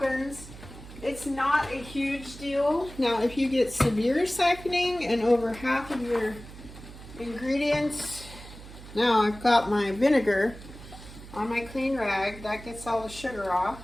it's not a huge deal. Now, if you get severe siphoning and over half of your ingredients, now I've got my vinegar on my clean rag, that gets all the sugar off.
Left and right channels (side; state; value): right; noise; hum, 16 dB below the sound